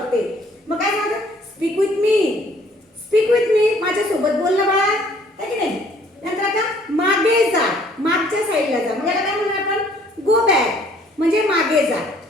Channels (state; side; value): normal; both; correlation 0.59